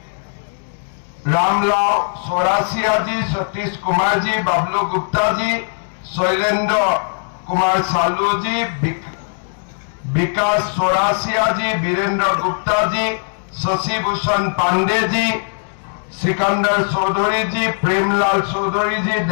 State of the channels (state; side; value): silent; right; digital silence